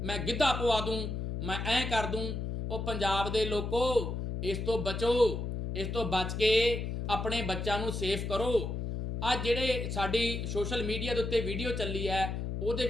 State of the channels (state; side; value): noise; left; hum, 3 dB below the sound